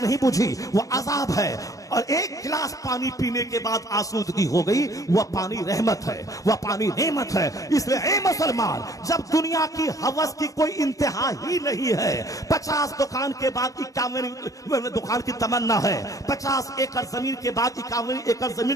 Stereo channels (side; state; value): right; late; 0.16 ms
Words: नहीं बुझी, वह अजाब है। और 1 गिलास पानी पीने के बाद आसूदगी हो गई, वह पानी रहमत है, वह पानी नेमत है। इसलिए ए मुसलमान, जब दुनिया की हवस की कोई इंतहा ही नहीं है, 50 दुकान के बाद 51 दुकान की तमन्ना है, 50 एकड़ जमीन के बाद 51 एकड़